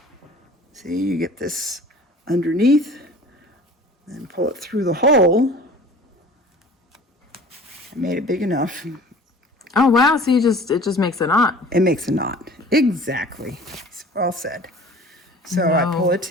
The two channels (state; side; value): normal; both; correlation 0.44